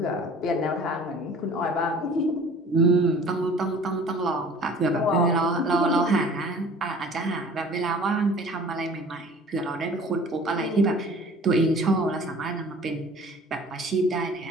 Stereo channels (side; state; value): both; normal; correlation 0.48